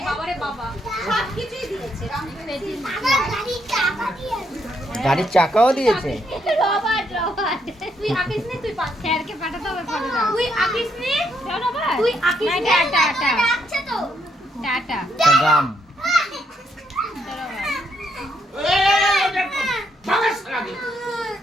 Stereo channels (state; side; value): normal; both; correlation 0.75